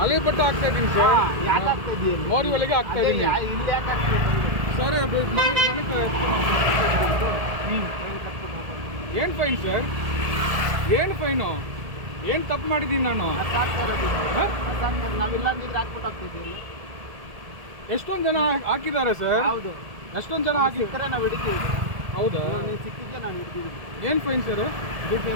ಹಳೆ ಬಟ್ಟೆ ಹಾಕ್ತಾ ಇದ್ದೀನಿ ಸರ್. ಯಾಕೆ ಆಗ್ತಾ ಇದೆಯಾ? ಮೋರಿ ಒಳಗೆ ಹಾಕ್ತಾ ಇದ್ದೀನಿ ಇಲ್ಲಿ ಯಾಕೆ ಆಗ್ತಾ ಸರ್. ಏನು ಫೈನ್ ಸರ್? ಏನು ಫೈನು? ಏನು ತಪ್ಪು ಮಾಡಿದ್ದೀನಿ ನಾನು? ನಾವಿಲ್ಲ ನೀರು ಹಾಕ್ಬಿಟ್ಟು ಹೋಗ್ತಿದ್ದೀವಿ. ಎಷ್ಟೊಂದು ಜನ ಹಾಕಿದ್ದಾರೆ ಸರ್. ಹೌದು, ಎಷ್ಟೊಂದು ಜನ ಹಾಕಿ ಸಿಕ್ಕರೆ ನಾವು ಹಿಡಿತೀವಿ. ಹೌದಾ? ನೀವು ಸಿಕ್ಕಿದ್ರೆ ನಾವು ಹಿಡ್ತೀವಿ. ಏನು ಫೈನ್ ಸರ್? ದುಡ್ಡು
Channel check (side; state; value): left; late; 1.7 ms